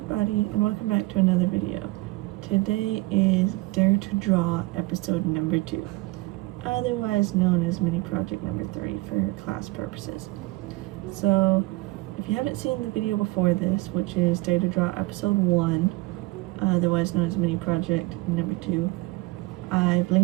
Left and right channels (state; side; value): quieter; left; 22.2 dB